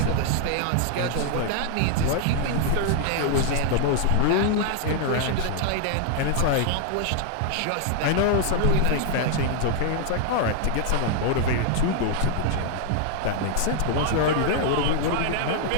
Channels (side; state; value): both; different; correlation 0.00